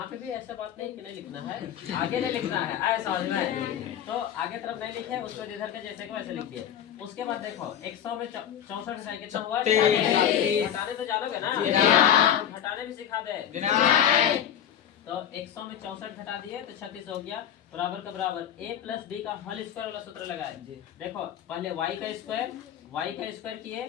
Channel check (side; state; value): right; quieter; 9.9 dB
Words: पे भी ऐसा बात नहीं कि नहीं लिखना है, आगे नहीं लिखना है, आए समझ में? तो आगे तरफ नहीं लिखे, उसको इधर के जैसे को ऐसे लिख दिए। उसके बाद देखो 100 में 64 घटाए कितना हुआ? घटाने तो जानोगे ना? घटाने भी सिखा दे। तो 100 में 64 घटा दिए तो 36 हो गया बराबर का बराबर a प्लस बी का होल स्क्वायर वाला सूत्र लगाए। देखो पहले y का स्क्वायर किए,